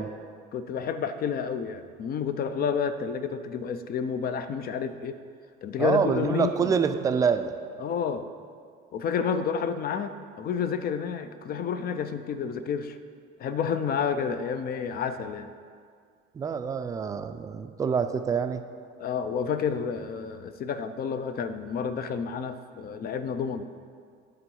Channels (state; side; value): normal; both; correlation 0.34